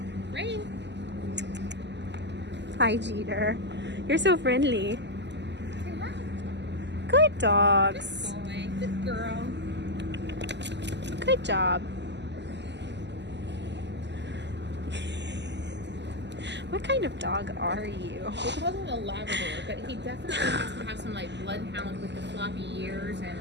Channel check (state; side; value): late; left; 0.51 ms